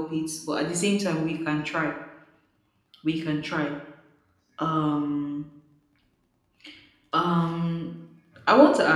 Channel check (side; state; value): both; identical; correlation 1.00